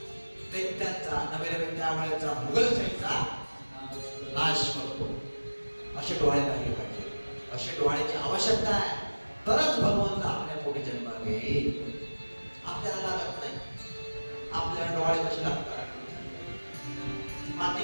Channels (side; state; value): both; inverted; correlation -1.00